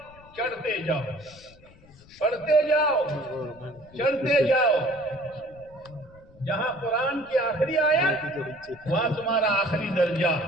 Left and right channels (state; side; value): noise; left; rumble, 25 dB below the sound